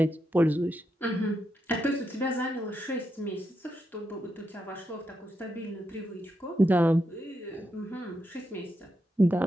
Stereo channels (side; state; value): both; normal; correlation 0.84